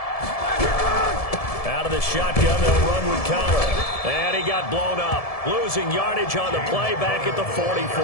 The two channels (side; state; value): right; late; 1.7 ms